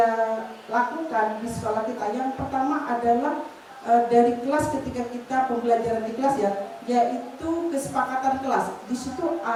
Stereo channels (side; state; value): both; identical; correlation 1.00